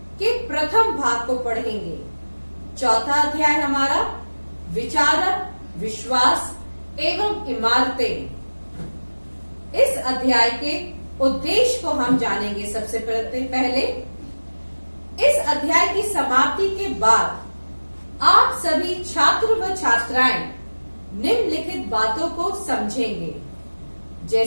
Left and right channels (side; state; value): both; inverted; correlation -1.00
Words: के प्रथम भाग को पढ़ेंगे। चौथा अध्याय हमारा विचारक, विश्वास एवं इमारतें। इस अध्याय के उद्देश्य को हम जानेंगे। सबसे पहले इस अध्याय की समाप्ति के बाद आप सभी छात्र व छात्राएं निम्नलिखित बातों को समझेंगे,